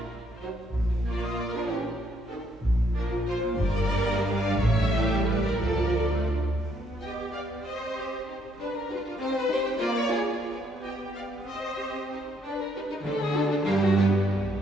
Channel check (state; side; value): normal; both; correlation 0.70